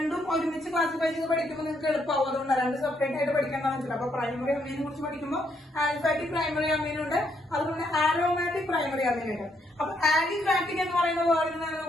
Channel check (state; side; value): normal; both; correlation 0.74